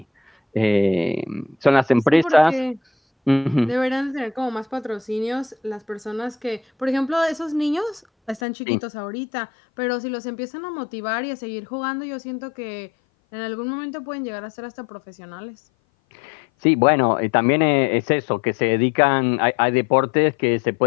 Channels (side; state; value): right; drops out; at 8.4 s